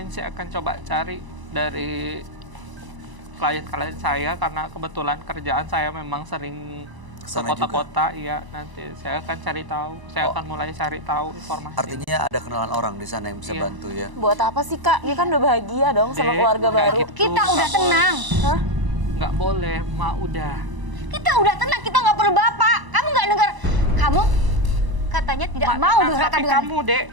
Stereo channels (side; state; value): left; late; 1.0 ms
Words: saya akan coba cari dari klien-klien saya karena kebetulan kerjaan saya memang sering ke Kesana juga. kota-kota. Iya, nanti saya akan cari tahu. Saya akan mulai cari tahu informasi. Artinya ada kenalan orang di sana yang bisa Iya. bantu ya. Buat apa sih Kak? Dia kan udah bahagia dong sama Dek, keluarga nggak baru. gitu. Kita udah Nggak tenang. Hah? Nggak boleh, Mak udah. Kita udah tenang, kita nggak perlu bapak. Kamu nggak dengar? Kamu katanya tidak Mak, mau tenang, durhaka tapi dengan kamu, Dek,